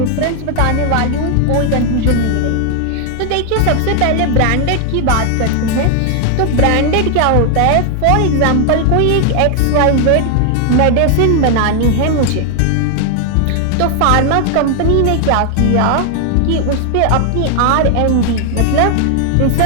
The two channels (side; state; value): both; different; correlation 0.00